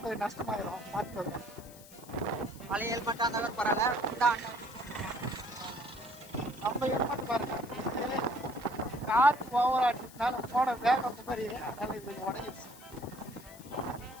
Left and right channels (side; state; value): left; noise; hiss, 20 dB below the sound